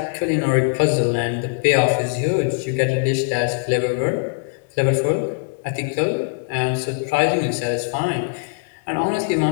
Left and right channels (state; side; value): quieter; right; 38.8 dB